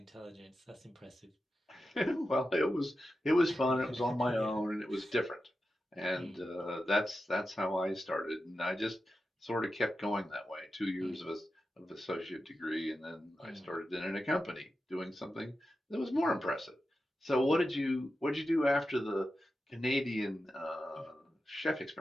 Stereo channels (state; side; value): normal; both; correlation 0.91